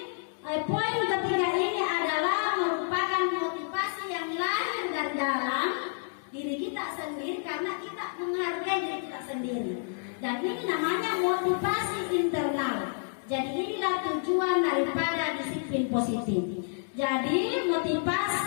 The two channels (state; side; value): silent; right; digital silence